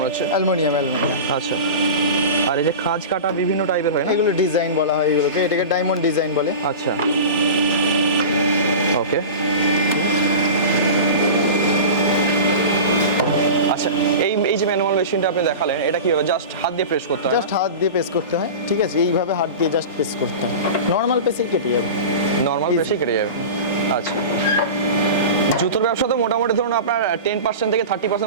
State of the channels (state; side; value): inverted; both; correlation -0.30